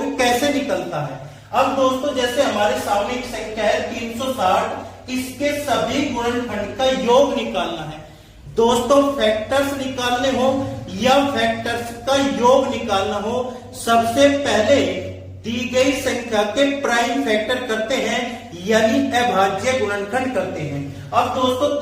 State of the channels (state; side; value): identical; both; correlation 1.00